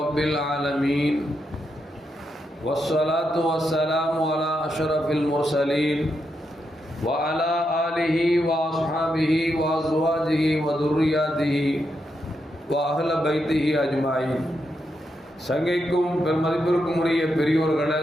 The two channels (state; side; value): normal; both; correlation 0.83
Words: العالمين والصلاة والسلام على أشرف المرسلين وعلى آله وأصحابه وأزواجه وذرياته وأهل بيته أجمعين. சங்கைக்கும் பெருமதிப்பிற்கும் உரிய பெரியோர்களே,